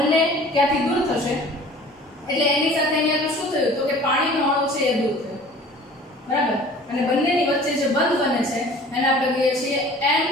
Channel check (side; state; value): both; normal; correlation 0.47